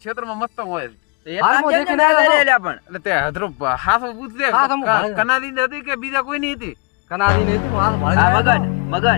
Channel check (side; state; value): right; quieter; 31.4 dB